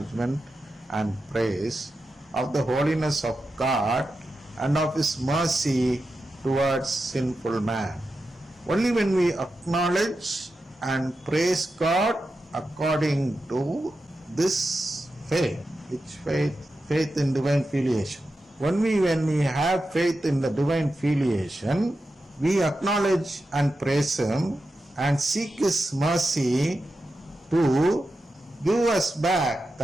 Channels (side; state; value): both; normal; correlation 0.90